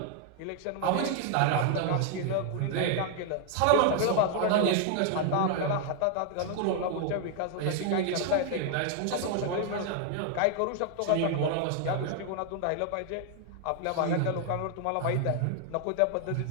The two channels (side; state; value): both; different; correlation 0.00